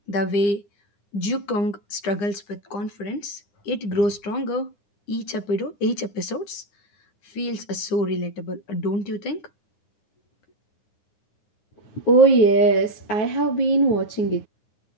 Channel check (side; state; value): right; late; 9.8 ms